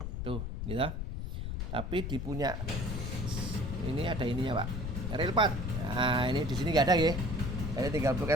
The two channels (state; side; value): noise; left; rumble, 4 dB below the sound